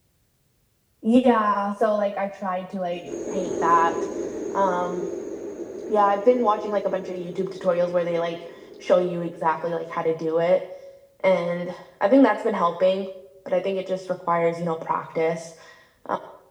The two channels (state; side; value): identical; both; correlation 1.00